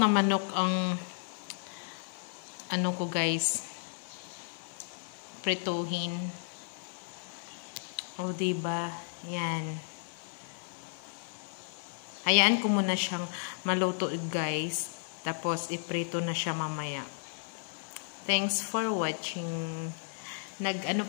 manok ang ko guys, prituhin. O diba? Yan. Hayaan ko muna siyang maluto guys. Tapos iprito na siya mamaya. Thanks for watching. Nag-ano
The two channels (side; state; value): right; silent; digital silence